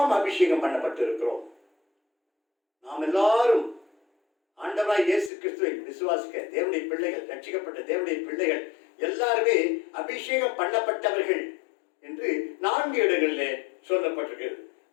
அபிஷேகம் பண்ணப்பட்டிருக்கிறோம். நாம் எல்லாரும் ஆண்டவராய் இயேசு கிறிஸ்துவை விசுவாசிக்க தேவனுடைய பிள்ளைகள், ரட்சிக்கப்பட்ட தேவனுடைய பிள்ளைகள் எல்லாருமே அபிஷேகம் பண்ணப்பட்டவர்கள் என்று 4 இடங்களிலே சொல்லப்பட்டிருக்கிறது.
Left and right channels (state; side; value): drops out; right; at 5.3 s